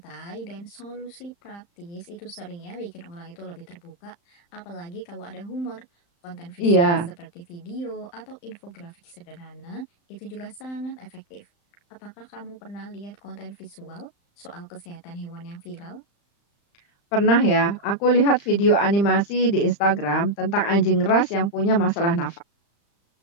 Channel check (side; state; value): right; late; 35 ms